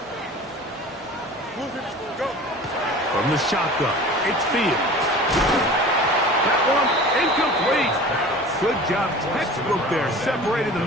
Go. From the shotgun, it's Fields. That one incomplete. Good job, textbook there, separating the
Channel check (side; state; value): both; normal; correlation 0.40